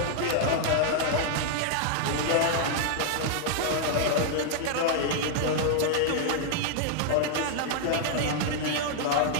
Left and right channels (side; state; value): both; different; correlation -0.01